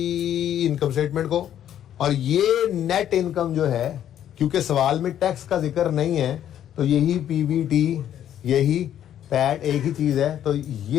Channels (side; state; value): right; quieter; 10.6 dB